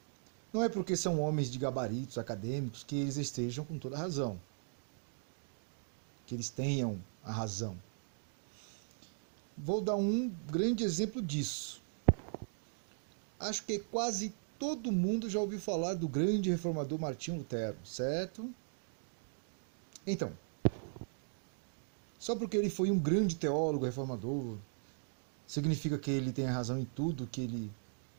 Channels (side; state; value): left; silent; digital silence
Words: não é porque são homens de gabaritos acadêmicos que eles estejam com toda a razão. Que eles tenham a razão. Vou dar um grande exemplo disso. Acho que quase todo mundo já ouviu falar do grande reformador Martinho Lutero, certo? Então, só porque ele foi um grande teólogo reformador, significa que ele tem a razão em tudo que ele